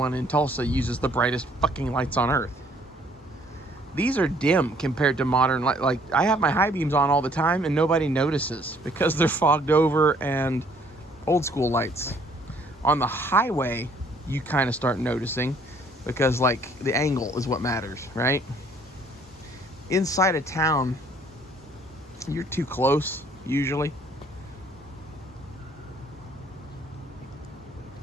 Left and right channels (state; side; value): normal; both; correlation 0.61